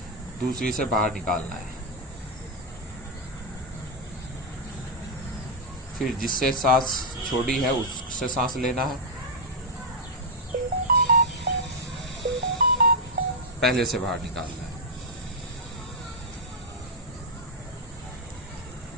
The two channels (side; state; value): both; normal; correlation -0.02